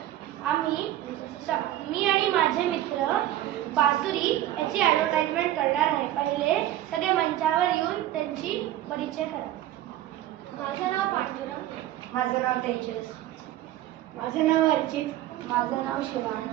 मी आणि माझे मित्र बासुरी याची ॲडव्हर्टाइजमेंट करणार आहे. पहिले सगळे मंचावर येऊन त्यांची परिचय करा. माझं नाव पांडुरंग. माझं नाव तेजस. माझं नाव अर्चित. माझं नाव शिवांश.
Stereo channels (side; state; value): left; quieter; 13.7 dB